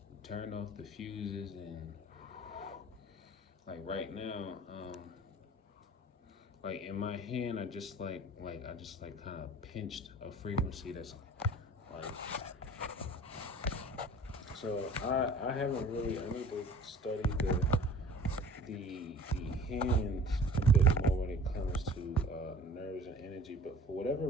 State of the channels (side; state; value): both; normal; correlation 0.46